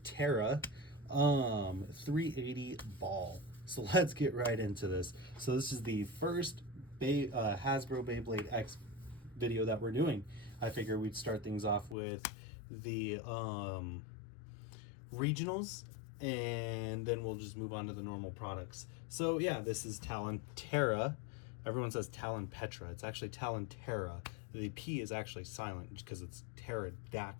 Terra 380 ball. So let's get right into this. So this is the first Hasbro Beyblade X video that we're doing. I figure we'd start things off with the regionals, and then we'll just move on to the normal products. So yeah, this is Talon Terra. Everyone says Talon Petra. It's actually Talon Terra. The P is actually silent because it's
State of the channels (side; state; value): right; drops out; at 12.0 s